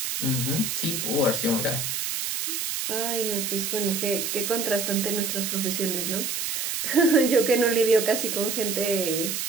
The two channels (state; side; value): noise; right; hiss, 2 dB below the sound